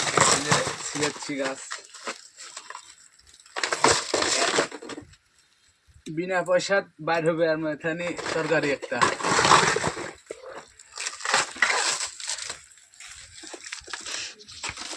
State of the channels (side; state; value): both; identical; correlation 1.00